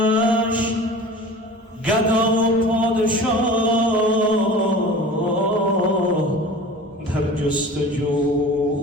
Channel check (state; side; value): normal; both; correlation 0.39